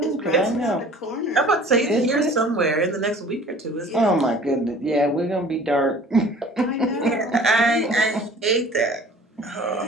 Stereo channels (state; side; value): normal; both; correlation 0.48